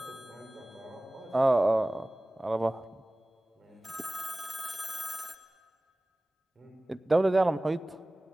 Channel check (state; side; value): normal; both; correlation 0.98